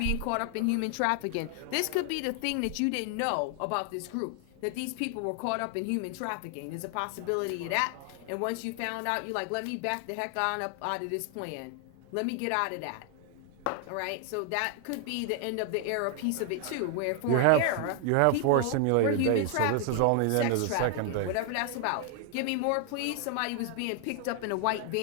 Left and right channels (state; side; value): different; both; correlation 0.00